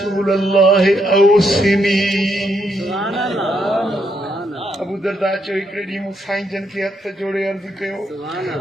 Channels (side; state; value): both; normal; correlation 0.77